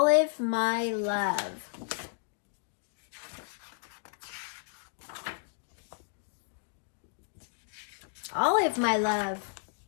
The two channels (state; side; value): silent; right; digital silence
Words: My Love. Olive My Love.